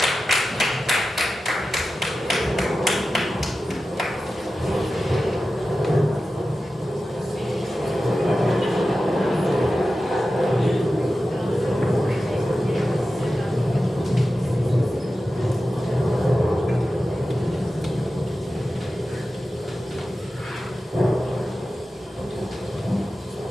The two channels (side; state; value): both; normal; correlation 0.93